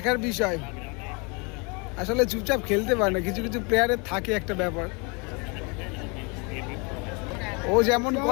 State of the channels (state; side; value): quieter; right; 31.1 dB